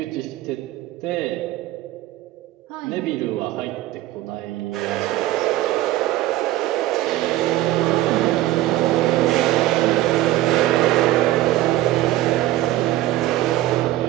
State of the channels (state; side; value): quieter; left; 15.4 dB